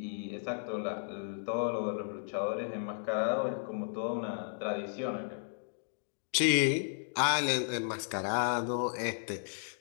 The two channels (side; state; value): right; silent; digital silence